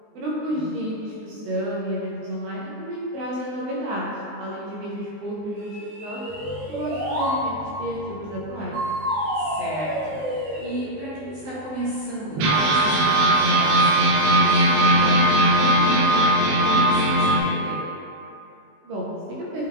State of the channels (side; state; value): left; late; 19 ms